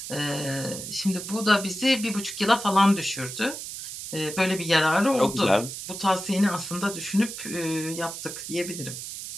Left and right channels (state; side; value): noise; right; hiss, 8 dB below the sound